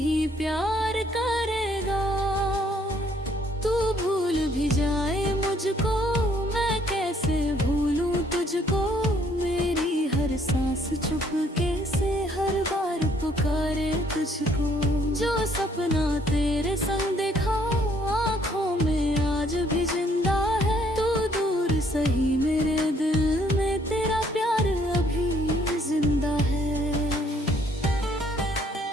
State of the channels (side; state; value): both; normal; correlation 0.65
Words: प्यार करेगा। तू भूल भी जाए मुझको, मैं कैसे भूलूं तुझको। मेरी हर सांस चुपके से हर बार पुकारे तुझको। जो सपना तेरे संग देखा आँखों में आज भी जिंदा है। तू दूर सही मेरे दिल में तेरा प्यार अभी जिंदा है।